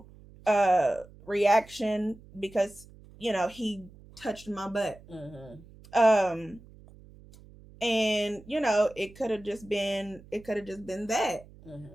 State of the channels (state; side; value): noise; right; hum, 22 dB below the sound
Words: reaction because, he touched my butt. And it could have just been that.